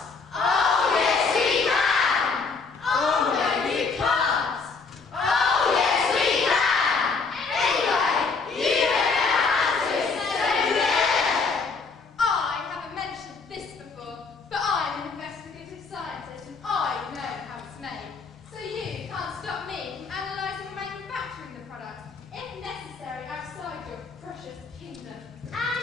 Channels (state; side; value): quieter; right; 4.6 dB